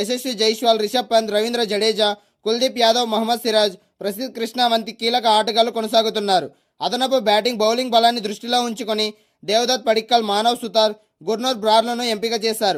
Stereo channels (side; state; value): both; identical; correlation 1.00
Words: జైస్వాల్, రిషబ్ పంత్, రవీంద్ర జడేజా, కుల్దీప్ యాదవ్, మహమ్మద్ సిరాజ్, ప్రసిద్ధ్ కృష్ణ వంటి కీలక ఆటగాళ్లు కొనసాగుతున్నారు. అదనపు బ్యాటింగ్, బౌలింగ్ బలాన్ని దృష్టిలో ఉంచుకొని దేవదత్ పడిక్కల్, మానవ్ సుతార్, గుర్నూర్ బ్రార్లను ఎంపిక